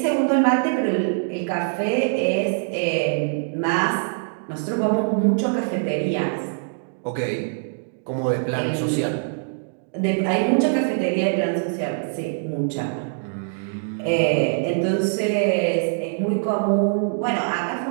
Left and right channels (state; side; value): silent; left; digital silence